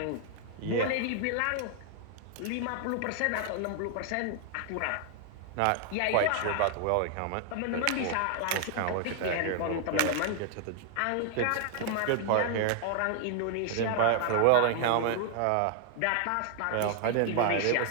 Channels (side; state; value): both; different; correlation 0.00